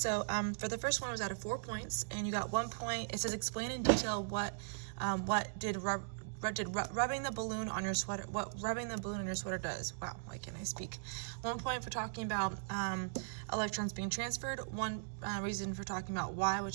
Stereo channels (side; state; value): left; silent; digital silence